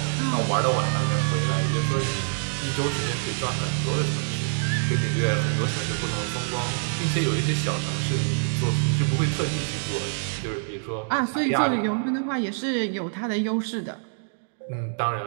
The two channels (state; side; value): silent; left; digital silence